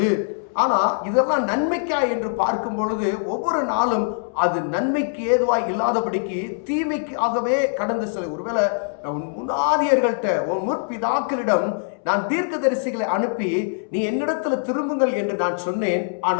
ஆனா இதெல்லாம் நன்மைக்கா என்று பார்க்கும் பொழுது ஒவ்வொரு நாளும் அது நன்மைக்கு ஏதுவாய் இல்லாதபடிக்கு தீமைக்காகவே கடந்து செல்ல. ஒருவேளை உன் முன்னாதியர்கள்ட்ட, உன் முற்பிதாக்களிடம் நான் தீர்க்கதரிசிகளை அனுப்பி நீ என்னிடத்துல திரும்புங்கள் என்று நான் சொன்னேன்,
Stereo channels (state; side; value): silent; right; 64 dB below the other